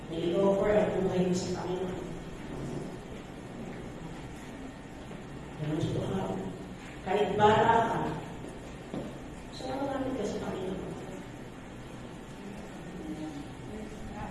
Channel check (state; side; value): identical; both; correlation 1.00